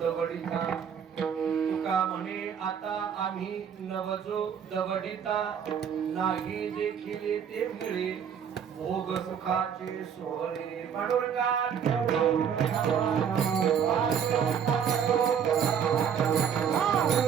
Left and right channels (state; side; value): quieter; left; 7.8 dB